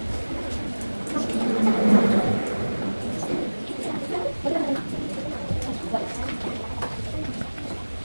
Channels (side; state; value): both; inverted; correlation -1.00